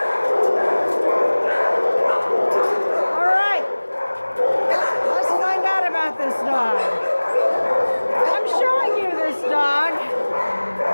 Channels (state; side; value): inverted; both; correlation -1.00